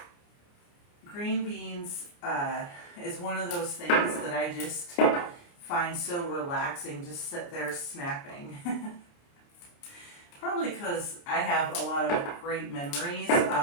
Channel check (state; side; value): late; right; 29 ms